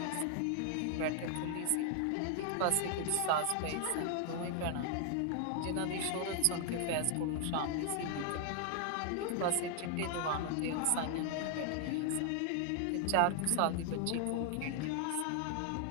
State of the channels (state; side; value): different; both; correlation 0.00